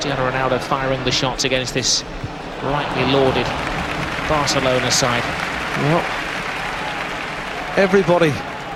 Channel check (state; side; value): identical; both; correlation 1.00